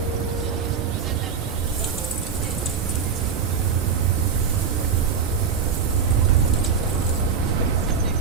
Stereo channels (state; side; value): quieter; left; 6.3 dB